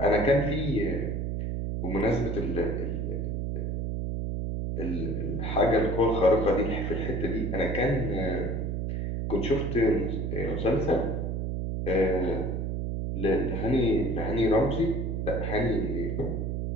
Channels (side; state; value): right; noise; hum, 1 dB below the sound